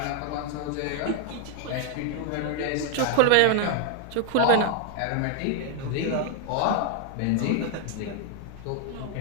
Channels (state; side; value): different; both; correlation 0.00